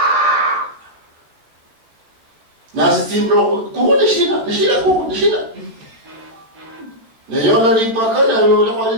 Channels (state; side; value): late; left; 13 ms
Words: na stimbro kuone shida kuone na yona lipaka na yona